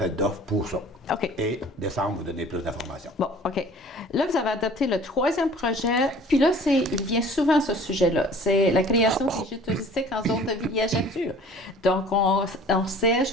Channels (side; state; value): both; normal; correlation 0.48